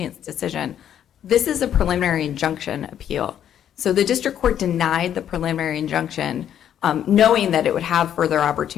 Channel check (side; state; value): right; quieter; 10.0 dB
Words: its decision. This is a preliminary injunction appeal. So the district court denied the preliminary injunction, knowing that it would have further